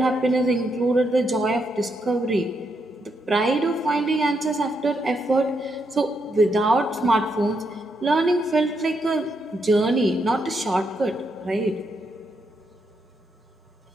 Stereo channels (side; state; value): both; normal; correlation 0.79